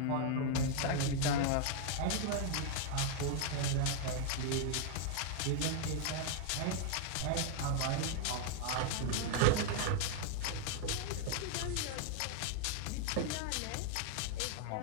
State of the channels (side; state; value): both; different; correlation 0.00